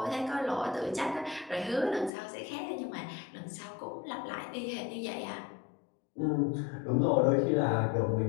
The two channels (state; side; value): drops out; right; at 2.1 s